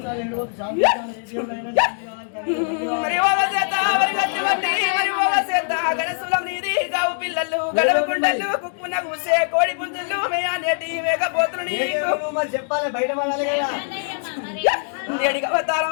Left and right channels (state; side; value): silent; right; digital silence